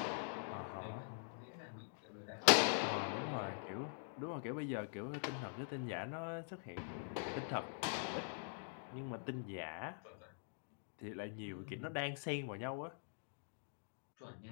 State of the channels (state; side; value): silent; right; digital silence